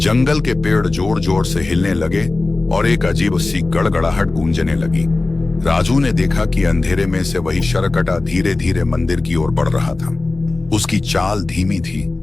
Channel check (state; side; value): quieter; right; 3.2 dB